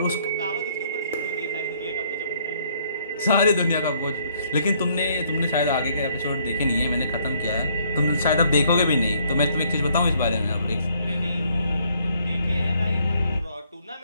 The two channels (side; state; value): both; inverted; correlation -0.66